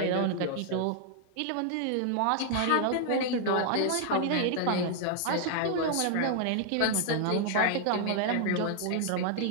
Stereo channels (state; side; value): different; both; correlation 0.00